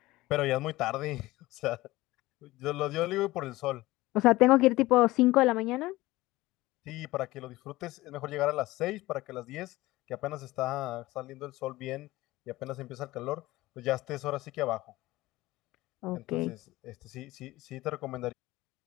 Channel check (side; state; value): right; quieter; 18.8 dB